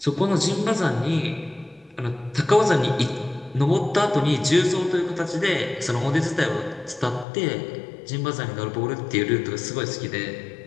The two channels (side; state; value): right; drops out; at 7.2 s